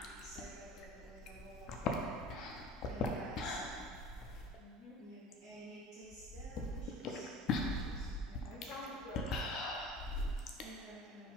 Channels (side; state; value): both; normal; correlation 0.41